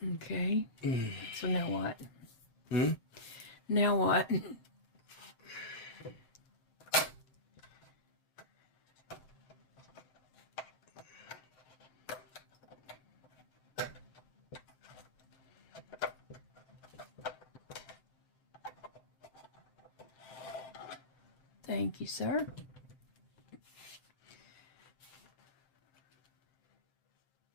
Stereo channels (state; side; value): late; right; 7.6 ms